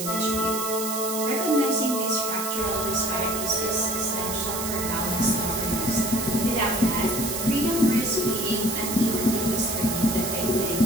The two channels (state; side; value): noise; right; hiss, 4 dB below the sound